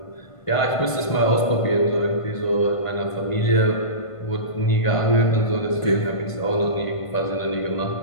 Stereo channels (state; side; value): late; right; 1.5 ms